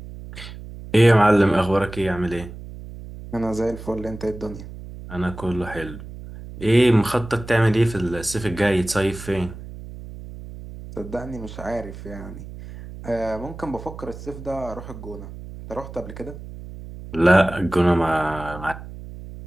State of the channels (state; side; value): noise; right; hum, 13 dB below the sound